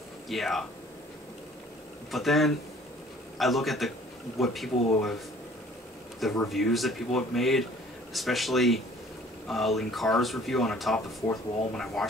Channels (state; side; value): normal; both; correlation 0.53